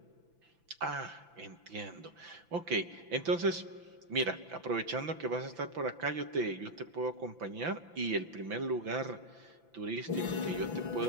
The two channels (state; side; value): late; left; 5.9 ms